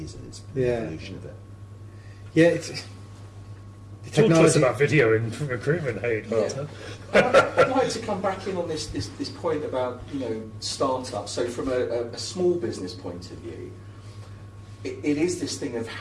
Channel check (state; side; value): identical; both; correlation 1.00